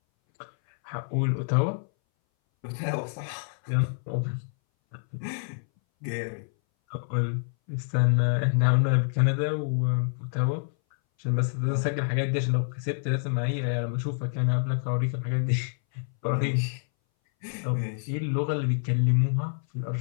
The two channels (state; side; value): silent; right; 59 dB below the other